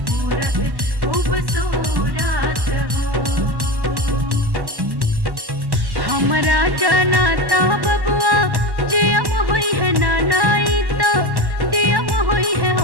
खूबसूरत हो। हमरा जनाता बबुआ जियम हुई है नानाई तो दियम हुई है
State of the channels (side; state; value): left; late; 1.1 ms